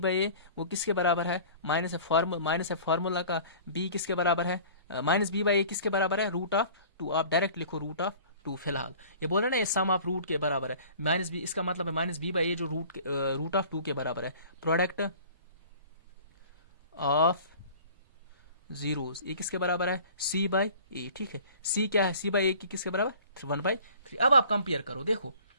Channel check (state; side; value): inverted; both; correlation -0.46